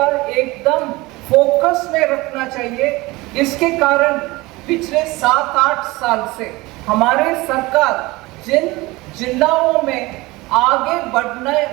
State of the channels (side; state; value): left; quieter; 21.5 dB